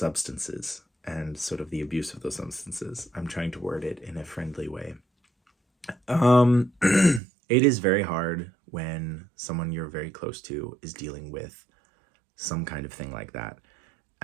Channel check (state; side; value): drops out; left; at 7.2 s